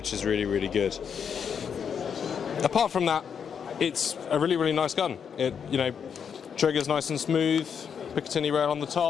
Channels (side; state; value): right; quieter; 7.2 dB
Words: is really, really good. Apart from that, it's a really, really nice gun. It, trigger's nice and smooth, Picatinny rail on the